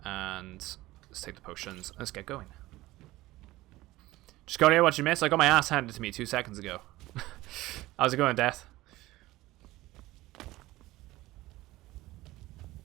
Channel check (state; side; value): quieter; left; 18.0 dB